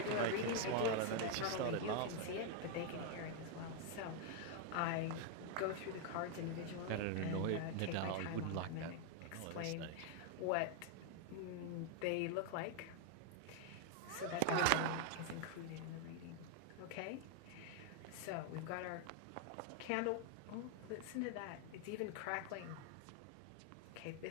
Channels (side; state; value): both; different; correlation 0.00